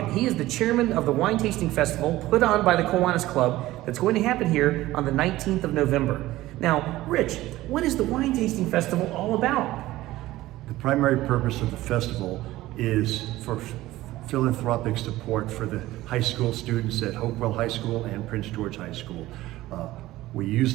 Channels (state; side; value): quieter; left; 16.7 dB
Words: He is the chairman of the Wine Tasting Festival put on by the Kiwanis Club that's going to happen here on the 19th of November. Now, Rich, what is the Wine Tasting Festival all about? The primary purpose of the festival is for philanthropic support for the high school students at Hopewell High School and Prince George High School. We use